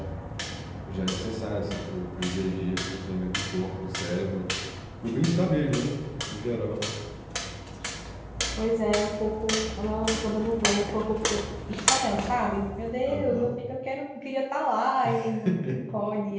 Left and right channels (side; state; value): both; identical; correlation 1.00